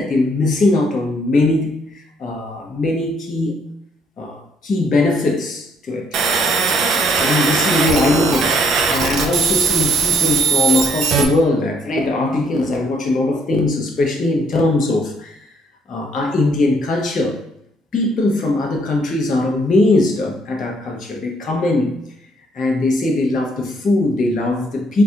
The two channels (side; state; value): both; normal; correlation 0.68